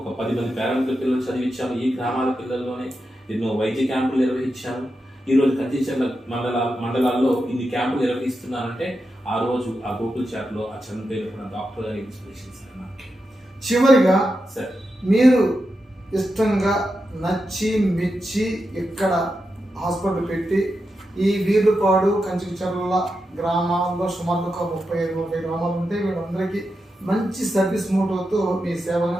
10 మంది పేరెంట్ల పిల్లలు చదివించాను. ఈ గ్రామాల పిల్లల్లోనే ఎన్నో వైద్య క్యాంపులు నిర్వహించాను. ఈరోజు కంచిచర్ల మండలాల్లో ఇన్ని క్యాంపులు నిర్వహిస్తున్నానంటే ఆ రోజు ఆ గోకుల్ చాట్లో ఆ చనిపోయిన డాక్టర్ గారి ఇన్స్పిరేషన్ సార్ నాకు. చివరిగా సార్ మీరు ఇష్టంగా నచ్చి మెచ్చి ఇక్కడ హాస్పిటల్ పెట్టి ఈ వీర్లుపాడు కంచిచర్ల గ్రామాల్లో సుమారు ఒక 35-40 గ్రామాలు ఉంటే వీళ్ళందరికీ మంచి సర్వీస్ మోటోతో మీ సేవను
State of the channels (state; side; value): normal; both; correlation 0.88